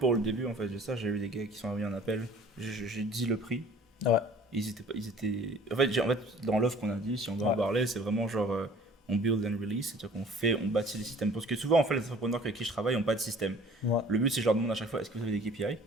le début, en fait, de ça, j'ai eu des gars qui sont envoyés un appel, j'ai dit le prix. Ils étaient... En fait, dans l'offre qu'on a dit, si on doit en parler, c'est vraiment genre, on build and release, c'est-à-dire on bâtit des systèmes. Parce que souvent, en fait, les entrepreneurs avec qui je travaille n'ont pas de système. Ouais. Le but, c'est que je leur demande à chaque fois, est-ce que vous avez des KPI?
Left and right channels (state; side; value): normal; both; correlation 0.51